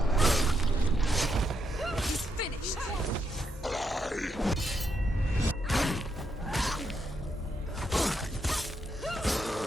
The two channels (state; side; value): normal; both; correlation 0.80